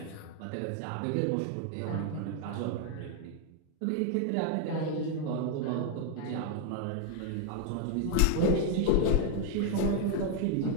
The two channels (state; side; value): different; both; correlation 0.00